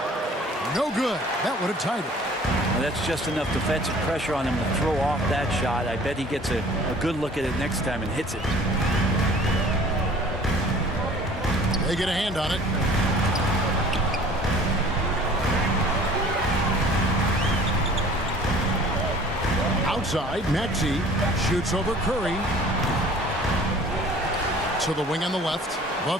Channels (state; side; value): normal; both; correlation 0.49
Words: No good. That would have tied it. Well, that's just enough defensive pressure on him to throw off that shot. I bet he gets a good look at it next time and hits it. They get a hand on it. Outside, Maxey shoots over Curry. To the wing on the left. The